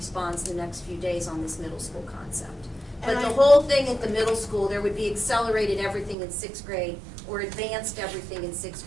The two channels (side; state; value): left; drops out; at 6.2 s